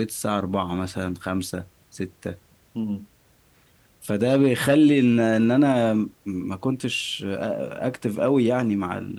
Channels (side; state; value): both; identical; correlation 1.00